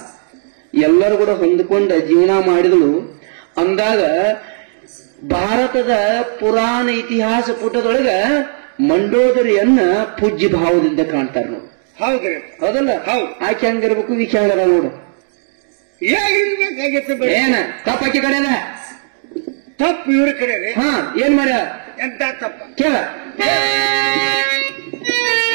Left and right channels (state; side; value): silent; left; digital silence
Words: ಎಲ್ಲರೂ ಕೂಡ ಹೊಂದ್ಕೊಂಡ ಜೀವನ ಮಾಡಿದಳು. ಅಂದಾಗ ಭಾರತದ ಪುರಾಣ ಇತಿಹಾಸ ಪುಟದೊಳಗ ಮಂಡೋದರಿಯನ್ನ ಪೂಜ್ಯ ಭಾವದಿಂದ ಕಾಣ್ತಾರೆ ನೋಡಿ. ಹೌದ್ರಿ? ಹೌದಲ್ಲ? ಹೌದು. ಆಕೆ ಹಂಗಿರ್ಬೇಕು, ಈಕೆ ಹಂಗಾರ ನೋಡು. ಹೇಗಿರ್ಬೇಕಾಗಿತ್ತು? ಏನ ತಪ್ಪಾಕಿ ಕಡೆನ ತಪ್ಪು ಇವ್ರ ಕಡೆ. ಏನ್ ಮಾಡ್ಯ? ಎಂತ ತಪ್ಪ ಕೇಳ.